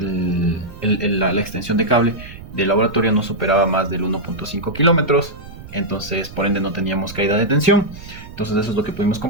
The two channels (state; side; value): noise; right; rumble, 15 dB below the sound